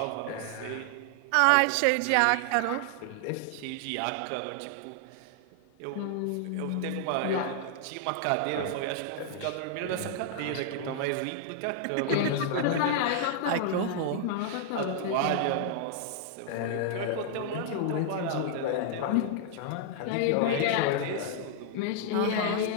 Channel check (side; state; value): both; different; correlation 0.00